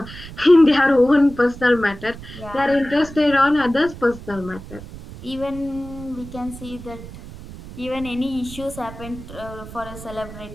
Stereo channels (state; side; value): noise; right; rumble, 14 dB below the sound